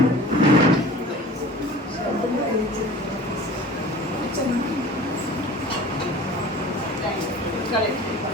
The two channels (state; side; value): normal; both; correlation 0.42